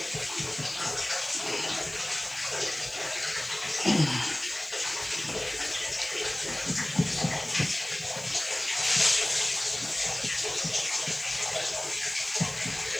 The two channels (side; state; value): left; noise; hiss, 22 dB below the sound